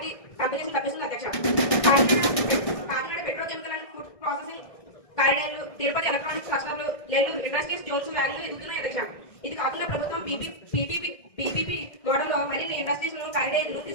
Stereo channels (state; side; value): late; right; 1.6 ms